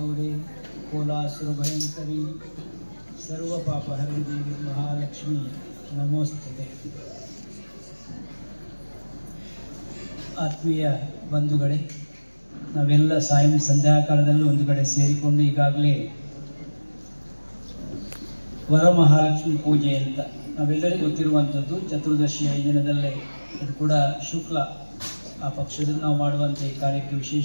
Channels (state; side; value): inverted; both; correlation -1.00